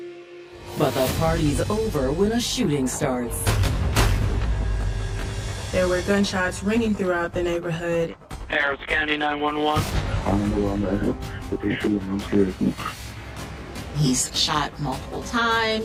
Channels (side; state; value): both; identical; correlation 1.00